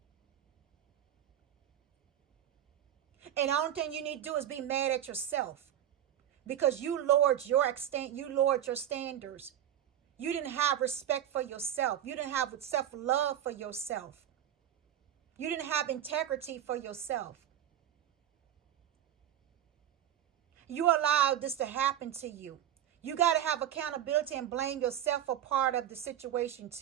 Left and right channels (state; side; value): quieter; left; 10.8 dB